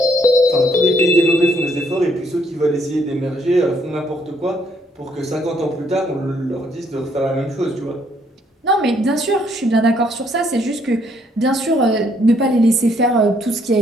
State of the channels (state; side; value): normal; both; correlation 0.69